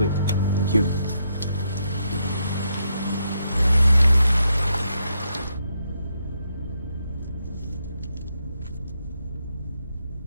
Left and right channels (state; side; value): inverted; both; correlation -0.79